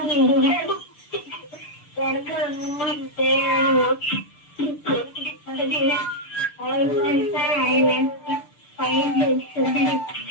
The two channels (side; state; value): right; late; 6.8 ms